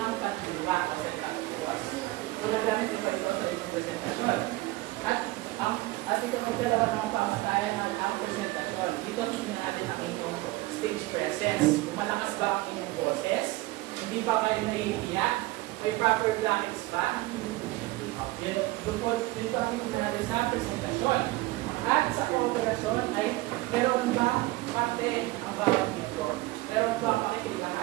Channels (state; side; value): quieter; left; 19.9 dB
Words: pagdiwa o sentaktuas. Kung nagamit ba ito sa itong presentasyon. At ito magdalawa ng pamatayan ang presentasyon. Dito tingnan natin ang inyong stage presence. Kung malakas ba ang inyong boses, hindi ba kayo naiiyak, may proper blankets ba? Dito ang tingnan natin sa presentasyon. At sa kooperasyon ay meron ba parte ang bawat miyembro? Meron ba